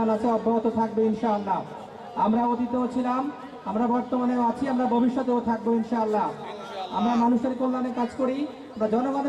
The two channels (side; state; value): both; identical; correlation 1.00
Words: আছে, অব্যাহত থাকবে ইনশাআল্লাহ। আমরা অতীতেও ছিলাম, আমরা বর্তমানেও আছি, আমরা ভবিষ্যতেও থাকবো ইনশাআল্লাহ। আমরা মানুষের কল্যাণে কাজ করি, আমরা